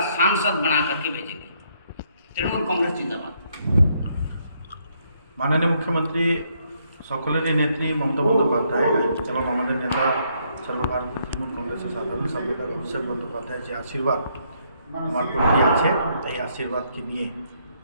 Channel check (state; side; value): inverted; both; correlation -0.72